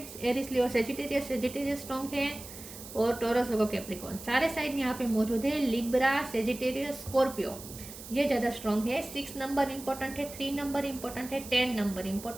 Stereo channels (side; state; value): right; noise; hiss, 14 dB below the sound